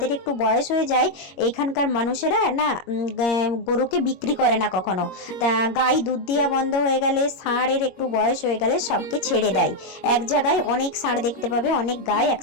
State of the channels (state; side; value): late; right; 22 ms